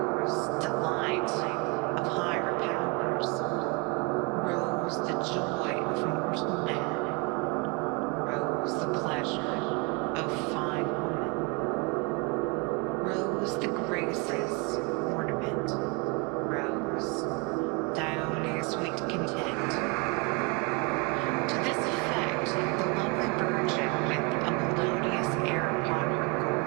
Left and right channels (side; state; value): left; quieter; 28.8 dB